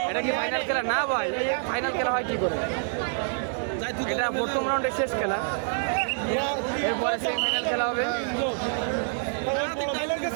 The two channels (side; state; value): left; silent; digital silence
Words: এটা কি ফাইনাল খেলা? না ভাই, ফাইনাল খেলা হয় কি করে? এটা প্রথম রাউন্ডের শেষ খেলা, এরপরে সেমিফাইনাল খেলা হবে।